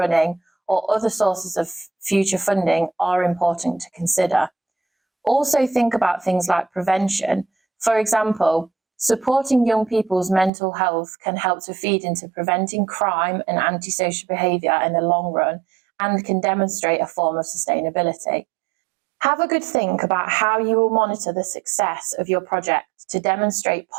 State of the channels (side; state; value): left; drops out; at 10.5 s